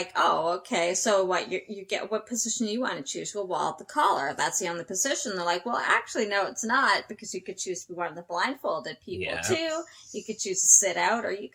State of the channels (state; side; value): identical; both; correlation 1.00